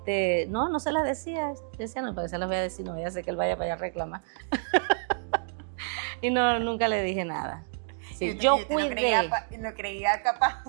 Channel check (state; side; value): silent; left; digital silence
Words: no se las decía. Yo decía, no, porque se las voy a decir, no voy a hacer que él vaya para allá a reclamar. Y no, nunca le dije nada. Sí, Y usted lo creía capaz.